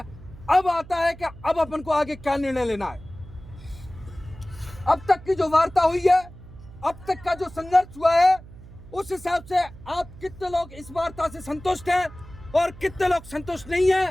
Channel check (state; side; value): noise; right; hum, 18 dB below the sound